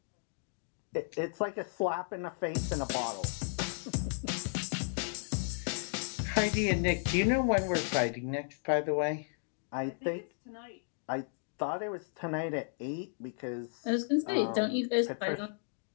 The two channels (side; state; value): right; silent; digital silence